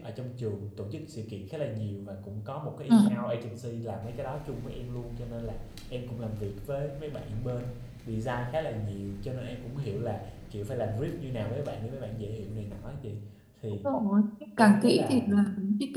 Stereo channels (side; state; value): both; identical; correlation 1.00